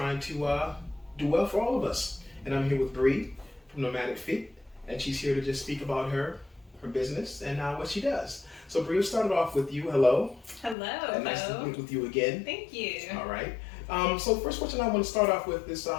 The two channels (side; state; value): right; drops out; at 10.8 s